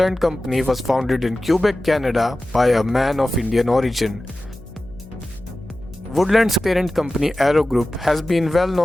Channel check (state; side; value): noise; left; hum, 21 dB below the sound